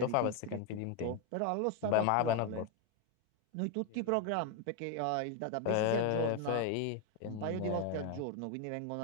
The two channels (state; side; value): different; both; correlation 0.01